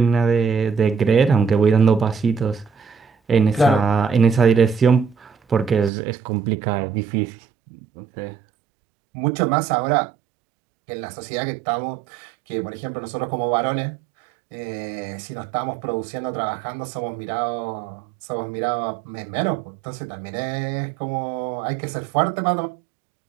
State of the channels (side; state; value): left; drops out; at 5.9 s